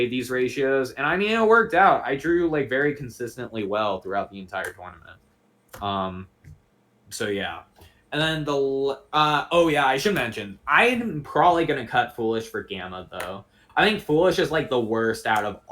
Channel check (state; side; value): identical; both; correlation 1.00